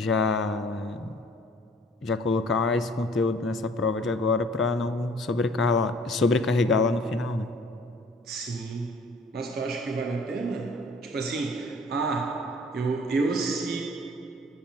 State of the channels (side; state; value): both; normal; correlation 0.53